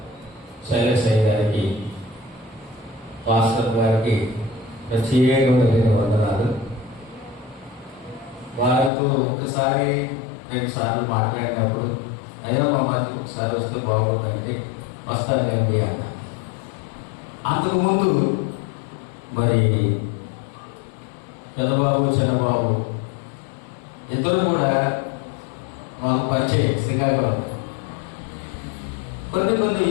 శైలశయ్య గారికి, పాస్టర్ గారికి ప్రత్యేకమైన వందనాలు. వారితో ఒకసారి 2 సార్లు మాట్లాడినప్పుడు ఏదైనా మా మధ్యకి ఒకసారి వస్తే బాగుంటుందండి, వస్తానండి అన్న. అంతకుముందు మరి పెద్దబాబు చిన్నబాబు ఇద్దరు కూడా మాకు పరిచయం శ్రీకాకుళం. కొన్ని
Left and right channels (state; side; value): drops out; right; at 8.9 s